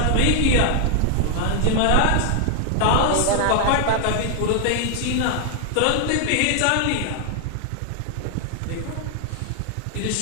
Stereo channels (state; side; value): different; both; correlation 0.00